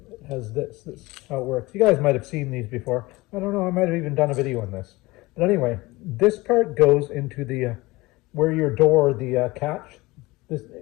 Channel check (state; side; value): quieter; right; 21.3 dB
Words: it has this is how it works. You guys might have seen these before. I don't know, I might have even done a video on this. But anyway, this part goes into the, where your door, the catch,